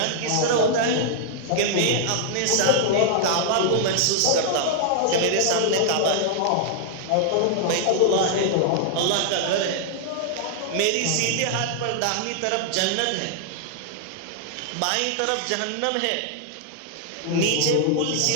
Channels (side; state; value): both; different; correlation -0.01